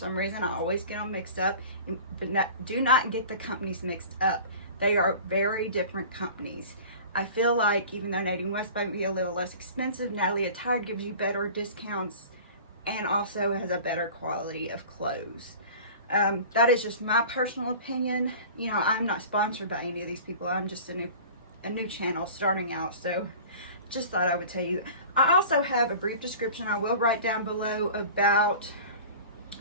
reason, I always get them mixed up. But do not get the companies mixed up. They are very different companies. I feel like even though Natty West might be a little less expensive, Natalie Attired gives you better discounts and also has a better quality of clothes. That is just my personal opinion. You know, I'm not sponsored by any of these people. I'm just a new channel starting out, so just thought I would tell you. I also have a brief description I will write down below about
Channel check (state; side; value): inverted; both; correlation -0.40